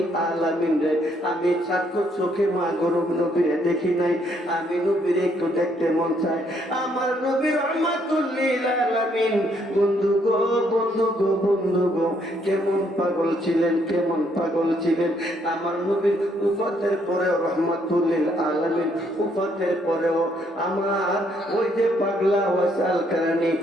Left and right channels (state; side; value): normal; both; correlation 0.70